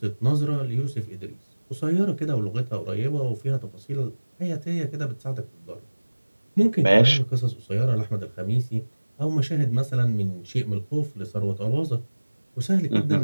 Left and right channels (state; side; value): inverted; both; correlation -1.00